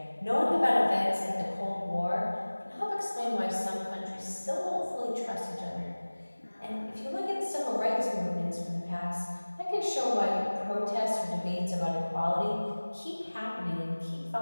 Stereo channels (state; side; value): inverted; both; correlation -1.00